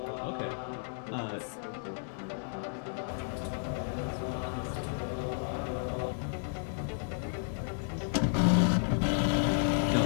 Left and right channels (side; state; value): right; silent; 56 dB below the other